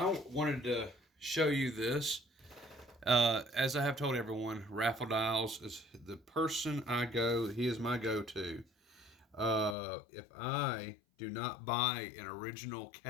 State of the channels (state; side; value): drops out; right; at 9.8 s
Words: wanted to show you this. As I have told everyone, Raffle Dials is the person he is my go-to. If I do not buy an original